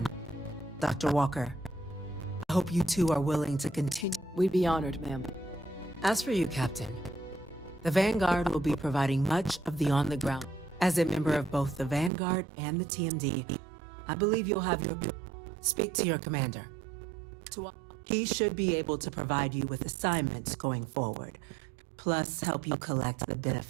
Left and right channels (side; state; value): left; drops out; at 12.1 s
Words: Dr. Walker, I hope you two are willing to continue. We'd be honored, ma'am. As for you, Captain, the Vanguard will be providing much of the on-the-ground. As a member of both the Vanguard and the TMD, I believe you'll have your... Speak to your commander. He should be able to provide you with assignments going forward, plus help you collect the